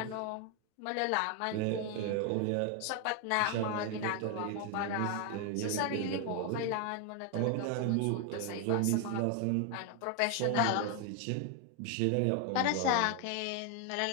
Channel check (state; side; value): different; both; correlation 0.01